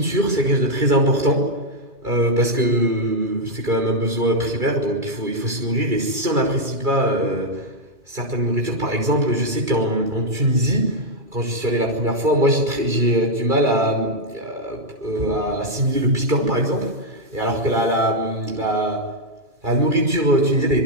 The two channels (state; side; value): late; left; 2.4 ms